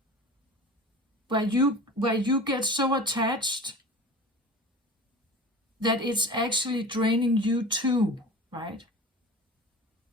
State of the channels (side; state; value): both; normal; correlation 0.36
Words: Where you get so attached that it's actually draining you too, right?